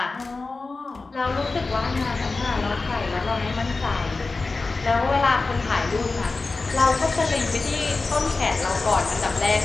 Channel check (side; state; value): right; quieter; 3.7 dB